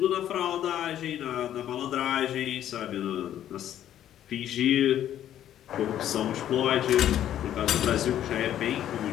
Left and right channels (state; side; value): quieter; right; 11.3 dB